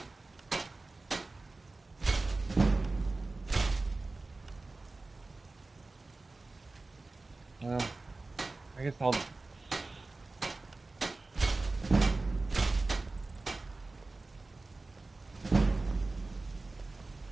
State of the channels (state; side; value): quieter; left; 3.4 dB